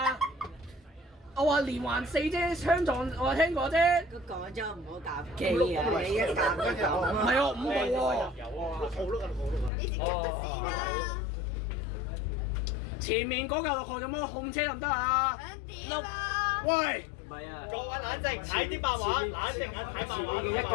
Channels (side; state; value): right; drops out; at 9.7 s